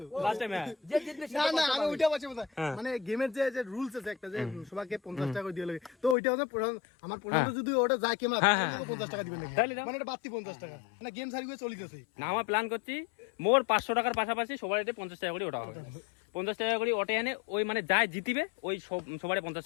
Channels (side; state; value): right; drops out; at 6.2 s